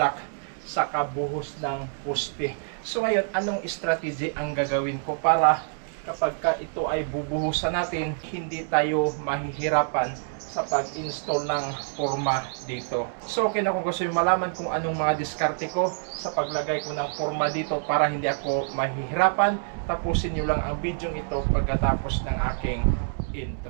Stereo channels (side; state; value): left; silent; digital silence